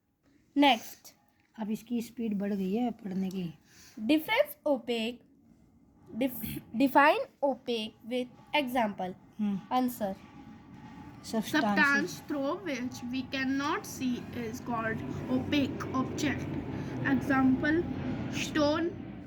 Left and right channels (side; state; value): both; identical; correlation 1.00